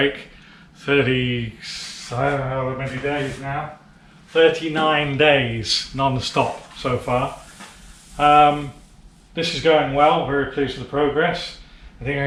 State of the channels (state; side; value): identical; both; correlation 1.00